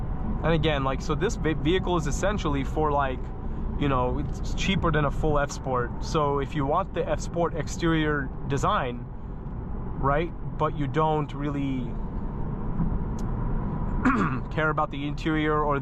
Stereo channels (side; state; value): both; identical; correlation 1.00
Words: And again, like, so this vehicle is essentially for, like, you know, it's cheaper than a full F Sport. So if you want the F Sport exterior design, right, but you don't really care about the interior or